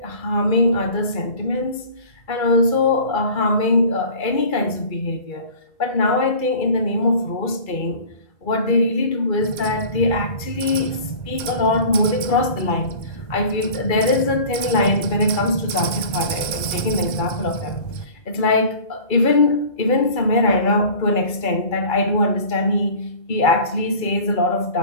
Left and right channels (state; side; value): late; right; 2.3 ms